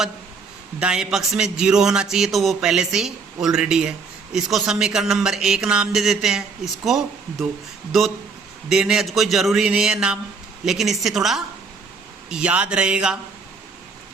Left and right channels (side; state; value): left; quieter; 4.8 dB